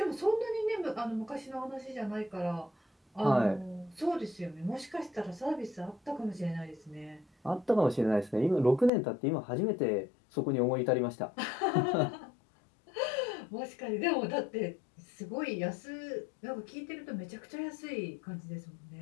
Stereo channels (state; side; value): drops out; right; at 8.9 s